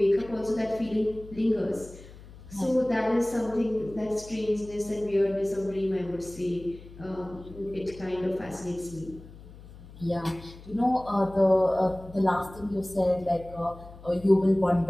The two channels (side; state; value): left; noise; hum, 18 dB below the sound